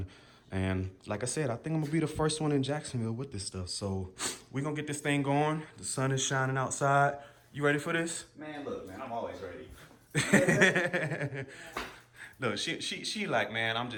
And like I said, I think I'm gonna be the first one in Jacksonville with this stuff. So we're gonna get this thing going. The sun is shining outside. You ready for this? Man, look, man, I'm always ready. Look, she like, man, I'm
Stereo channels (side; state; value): both; identical; correlation 1.00